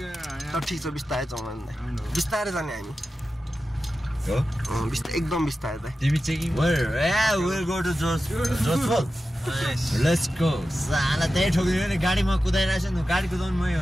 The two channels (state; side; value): normal; both; correlation 0.93